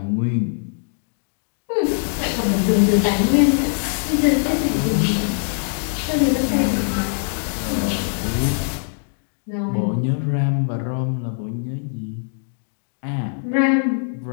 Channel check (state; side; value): silent; right; 64 dB below the other